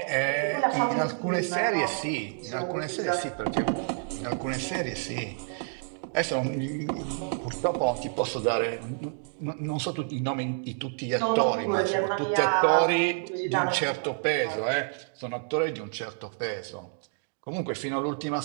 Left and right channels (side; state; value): left; silent; 59 dB below the other